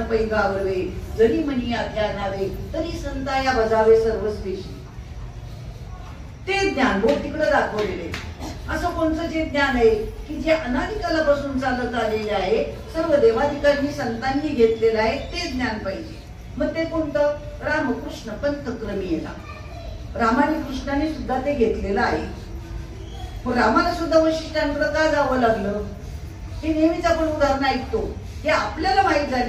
पैगावरवे, जरी मनी ध्यानावे तरी संताया बजावे सर्वस्वेशी. ते ज्ञान बोट तिकडे दाखवलेले. असं कोणतं जे ज्ञान आहे की जे अनादिकालापासून चालत आलेले आहे, सर्व देवाधिकांनी संतांनी घेतलेलं आहे, ते ज्ञान पाहिजे. मग ते कोणतं? रामकृष्ण पंथक्रमी येणार. रामाने कृष्णाने सुद्धा ते घेतलेलं आहे. मग रामाला सुद्धा वशिष्ठांकडे का जावं लागलं? हे नेहमीच आपण उदाहरण ऐकतो, हे आपल्याला माहीत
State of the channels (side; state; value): both; identical; correlation 1.00